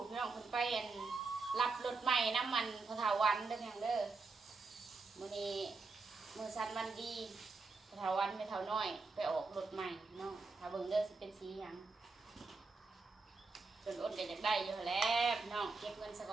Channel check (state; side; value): quieter; left; 4.0 dB